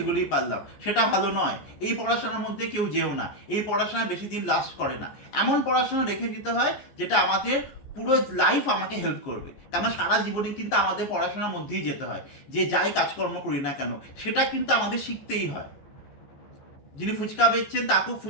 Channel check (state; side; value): late; right; 14 ms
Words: পারলাম, সেটা ভালো নয়। এই পড়াশোনার মধ্যে কেউ যেও না, এই পড়াশোনা বেশি দিন লাস্ট করে না। এমন পড়াশোনা রেখে দিতে হয় যেটা আমাদের পুরো লাইফ আমাকে হেল্প করবে। কেন সারা জীবনে কিন্তু আমাদের পড়াশোনার মধ্যেই যেতে হয়, যে যাই কাজকর্ম করি না কেন সেটা কিন্তু আমাদের শিখতেই হয়। যিনি ফুচকা বেচছেন তাকেও